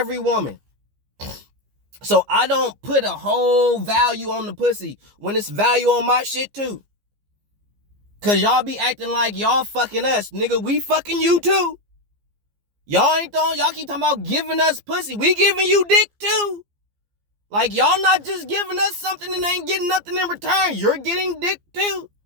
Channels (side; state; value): left; late; 15 ms